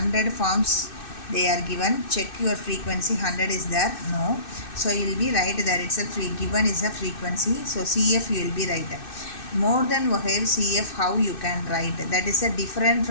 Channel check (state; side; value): late; right; 2.6 ms